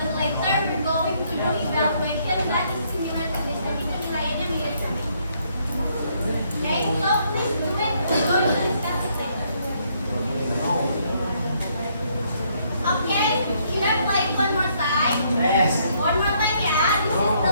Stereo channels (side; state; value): both; inverted; correlation -0.70